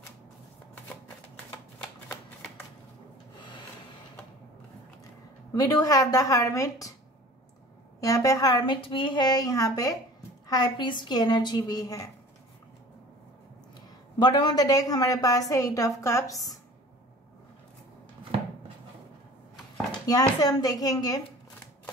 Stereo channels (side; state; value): both; normal; correlation 0.44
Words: We do have the hermit. यहाँ पे हार्मिट भी है, यहाँ पे हाई प्रीस्ट की एनर्जी भी है। बॉटम ऑफ द डेक हमारे पास है 8 ऑफ कप्स। यहां से हम देखेंगे